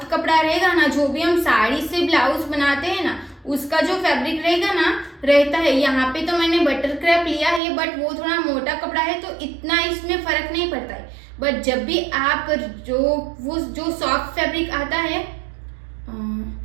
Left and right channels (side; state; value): left; drops out; at 7.6 s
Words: कपड़ा रहेगा ना, जो भी हम साड़ी से ब्लाउज बनाते हैं ना, उसका जो फैब्रिक रहेगा ना, रहता है, यहाँ पे तो मैंने बटर क्रैप लिया है, बट वो थोड़ा मोटा कपड़ा है तो इतना इसमें फर्क नहीं पड़ता है। बट जब भी आप जो सॉफ्ट फैब्रिक आता है,